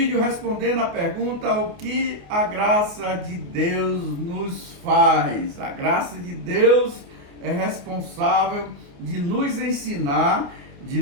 respondendo a pergunta: o que a graça de Deus nos faz? A graça de Deus é responsável de nos ensinar, de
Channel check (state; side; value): late; left; 28 ms